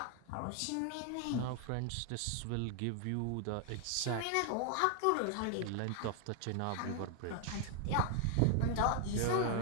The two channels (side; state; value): both; different; correlation 0.00